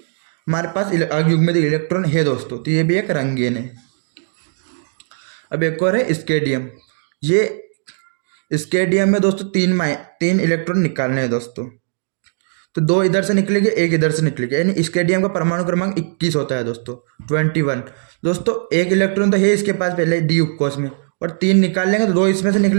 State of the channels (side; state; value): left; silent; digital silence